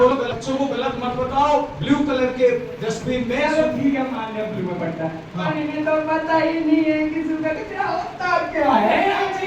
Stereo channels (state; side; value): identical; both; correlation 1.00